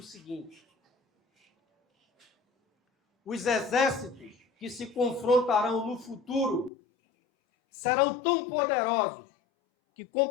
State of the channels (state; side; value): drops out; right; at 6.7 s